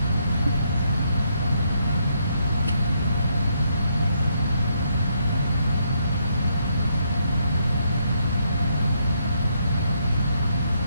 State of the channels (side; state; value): both; inverted; correlation -0.75